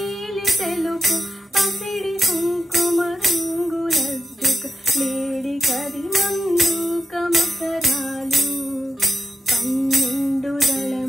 తెలుపు పసిడి కుంకుమ రంగులద్దుక లేడి కరిమందు కమకరాలు 12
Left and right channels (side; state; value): both; normal; correlation 0.88